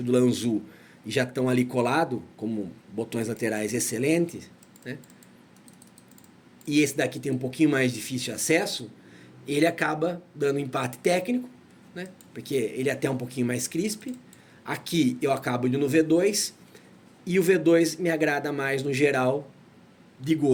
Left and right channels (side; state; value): both; identical; correlation 1.00